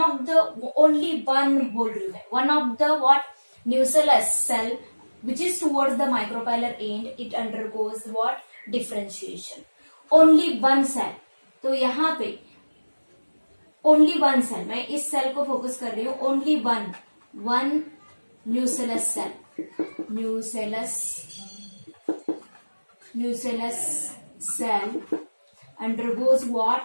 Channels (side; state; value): both; inverted; correlation -1.00